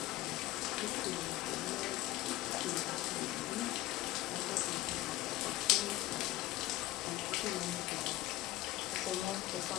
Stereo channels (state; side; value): quieter; right; 16.9 dB